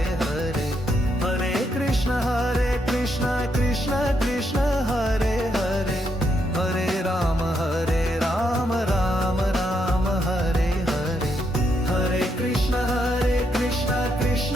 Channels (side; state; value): both; normal; correlation 0.78